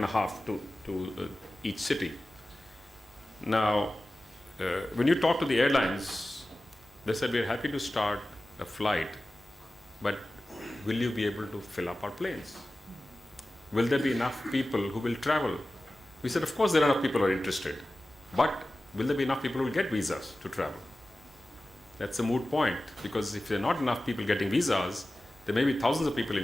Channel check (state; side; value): normal; both; correlation 0.95